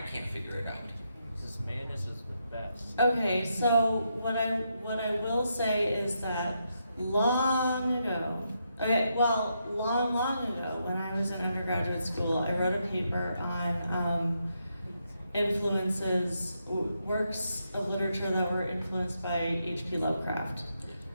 can't figure it out. This madness is the best. okay, so what I will say is that long ago, long ago, when I was in undergraduate school, I wrote a paper on works of literature that were influenced by H.P. Lovecraft.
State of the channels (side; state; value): both; inverted; correlation -0.81